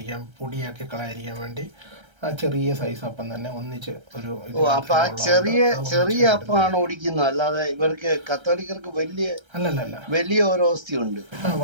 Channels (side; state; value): left; late; 1.3 ms